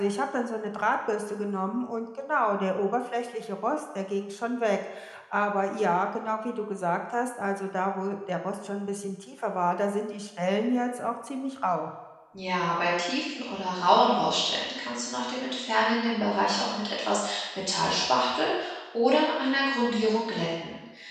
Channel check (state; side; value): identical; both; correlation 1.00